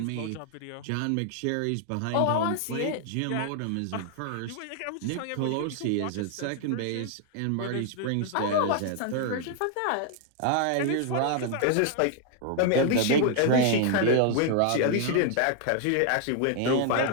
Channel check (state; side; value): different; both; correlation 0.00